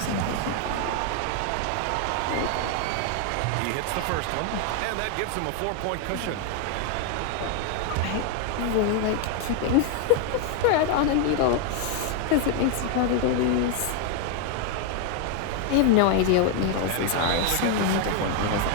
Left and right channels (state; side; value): different; both; correlation 0.00